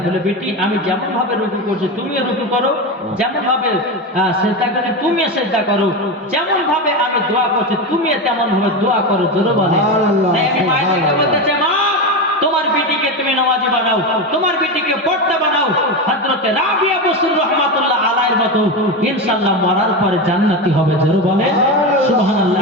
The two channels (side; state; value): both; normal; correlation 0.17